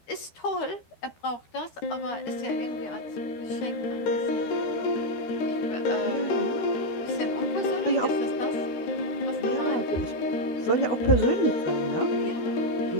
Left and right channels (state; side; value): late; right; 13 ms